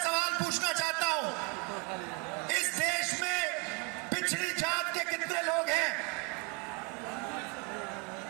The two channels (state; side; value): quieter; left; 29.6 dB